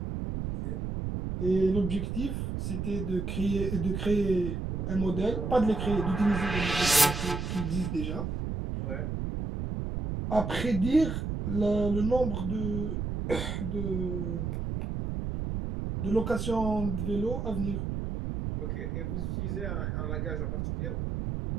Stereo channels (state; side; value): noise; right; rumble, 3 dB below the sound